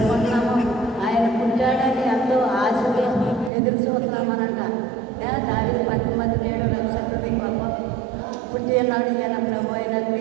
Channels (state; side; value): drops out; left; at 3.5 s